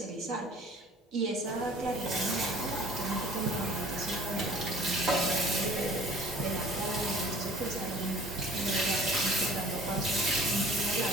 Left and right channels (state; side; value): normal; both; correlation 0.49